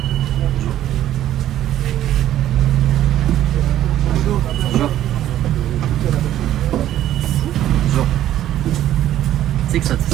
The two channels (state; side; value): quieter; left; 12.4 dB